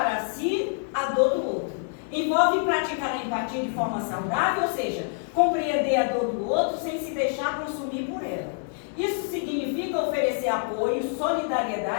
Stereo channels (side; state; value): right; silent; 61 dB below the other